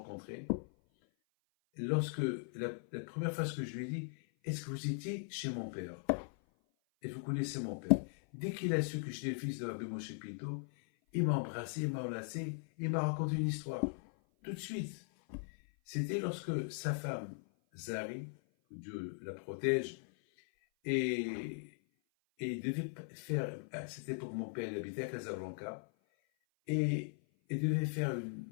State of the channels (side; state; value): right; silent; 52 dB below the other